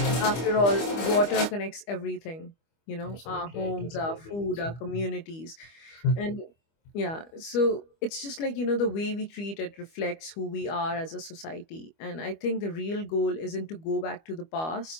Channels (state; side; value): late; right; 25 ms